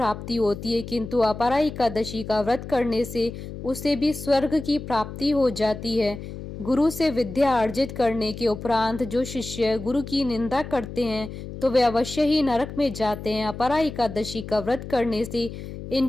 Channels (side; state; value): left; noise; hum, 10 dB below the sound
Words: होती है, किंतु अपरा एकादशी का व्रत करने से उसे भी स्वर्ग की प्राप्ति हो जाती है। गुरु से विद्या अर्जित करने के उपरांत जो शिष्य गुरु की निंदा करते हैं तो वे अवश्य ही नरक में जाते हैं। अपरा एकादशी का व्रत करने से